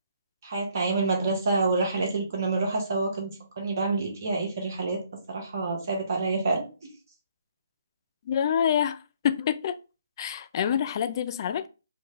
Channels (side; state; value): both; inverted; correlation -0.62